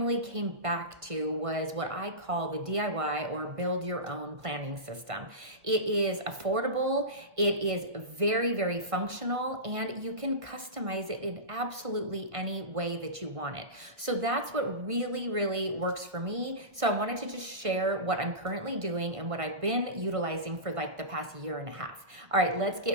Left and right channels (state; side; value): late; left; 1.5 ms